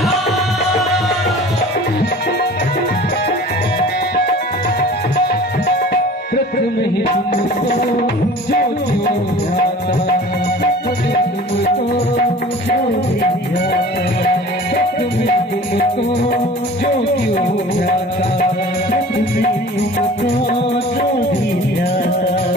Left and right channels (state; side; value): normal; both; correlation 0.43